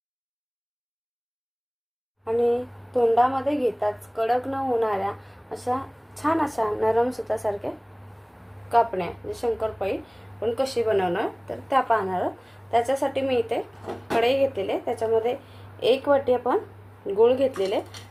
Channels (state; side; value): identical; both; correlation 1.00